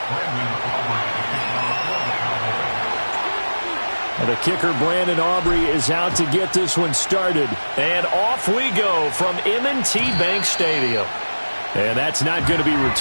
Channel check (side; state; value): both; inverted; correlation -1.00